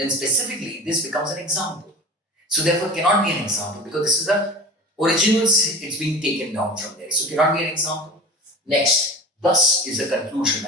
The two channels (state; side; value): normal; both; correlation 0.35